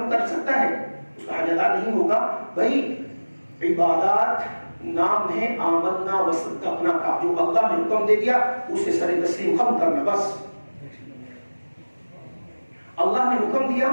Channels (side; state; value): both; inverted; correlation -1.00